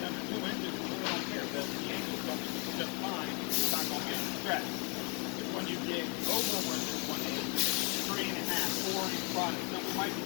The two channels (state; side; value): quieter; right; 34.8 dB